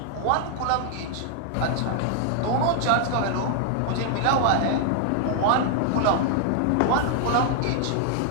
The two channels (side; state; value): both; different; correlation 0.00